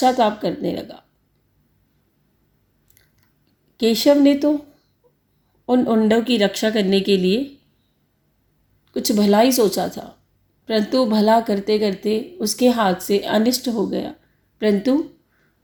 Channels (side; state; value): both; identical; correlation 1.00